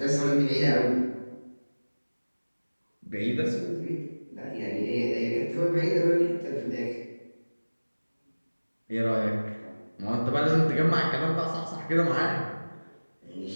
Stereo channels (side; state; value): both; inverted; correlation -1.00